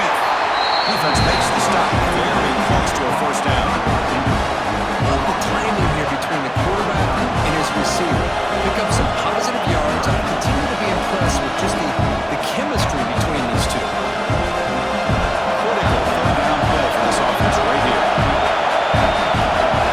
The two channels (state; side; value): identical; both; correlation 1.00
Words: Defense makes the stop, very close to a first down. Love the timing here between the quarterback and his receiver. Pick up some positive yards. I continue to be impressed with just the chemistry between these two. Critical third down play for this offense right here.